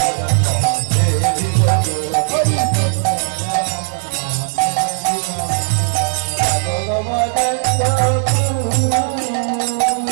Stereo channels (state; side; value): silent; left; digital silence